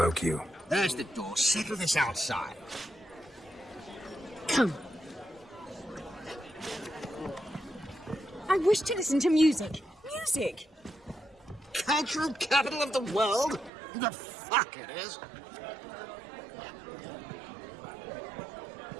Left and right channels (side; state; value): left; drops out; at 13.7 s